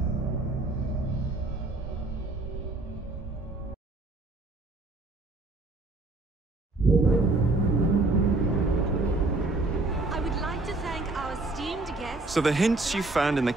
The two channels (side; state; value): left; quieter; 3.1 dB